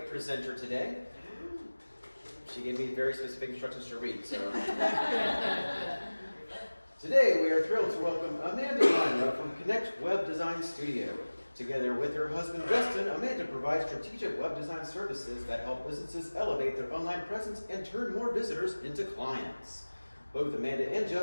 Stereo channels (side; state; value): both; inverted; correlation -1.00